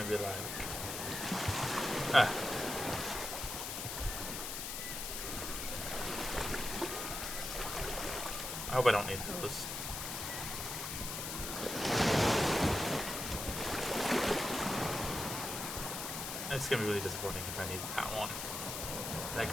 be like, ah. I hope I don't need those. It's gonna be really disappointing if I need that one. Like,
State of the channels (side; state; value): left; noise; hiss, 4 dB below the sound